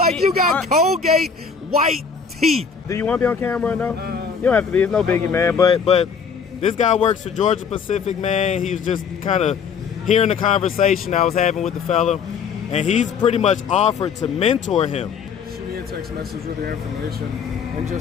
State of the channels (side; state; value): right; quieter; 6.1 dB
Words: You got Colgate white teeth. Do you want to be on camera or no? You don't have to be. It's no biggie, man. But this guy works for Georgia Pacific, man. He was just kind of hearing the conversation I was having with the fella, and he's pretty much offered to mentor him. Shoot me a text message with your information. And